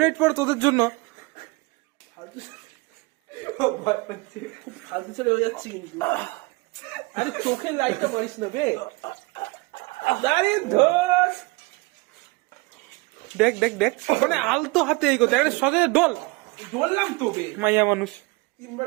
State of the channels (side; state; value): left; quieter; 25.8 dB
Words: পড়ে তোদের জন্য। ফালতু ছেলে হয়ে যাচ্ছি কিন্তু। আরে চোখের লাইটটা মারিস না বে। আরে ধর। দেখ দেখ দেখ মানে আলতো হাতে এই কথা একটা সজে ডল বললাম তো বে। মাইয়া মানুষ। 3 বার